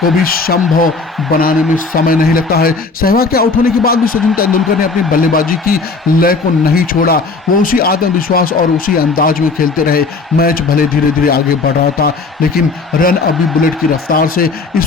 को भी संभव बनाने में समय नहीं लगता है। सहवाग के आउट होने के बाद भी सचिन तेंदुलकर ने अपनी बल्लेबाजी की लय को नहीं छोड़ा। वो उसी आत्मविश्वास और उसी अंदाज में खेलते रहे। मैच भले धीरे धीरे आगे बढ़ रहा था, लेकिन रन अभी बुलेट की रफ्तार से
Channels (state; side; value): quieter; right; 4.1 dB